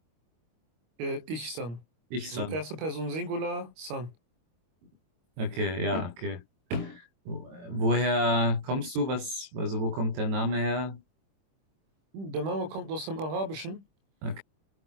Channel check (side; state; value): left; late; 23 ms